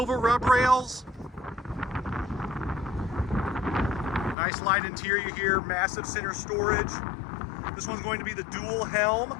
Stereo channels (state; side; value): drops out; right; at 4.4 s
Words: rub rails, nice light interior here, massive center storage. This one's going to be the dual helm,